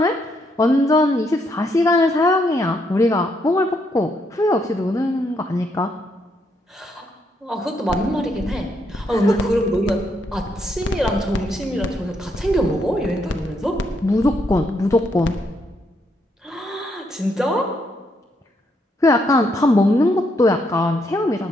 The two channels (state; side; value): normal; both; correlation 0.75